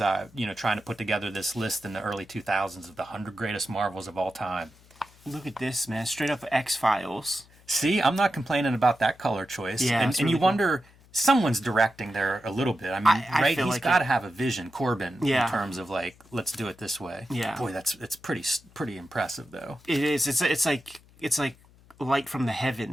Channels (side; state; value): left; noise; hum, 27 dB below the sound